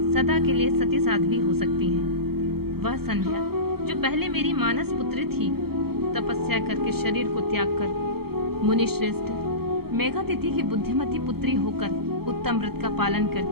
सदा के लिए सती साध्वी हो सकती हैं। वह संध्या जो पहले मेरी मानस पुत्री थी, तपस्या करके शरीर को त्याग कर मुनि श्रेष्ठ मेघातिथि की बुद्धिमती पुत्री होकर उत्तम व्रत का पालन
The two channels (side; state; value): left; late; 0.95 ms